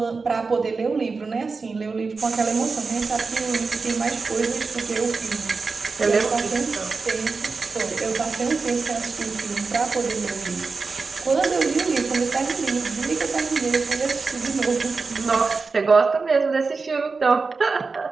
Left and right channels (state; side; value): quieter; left; 4.4 dB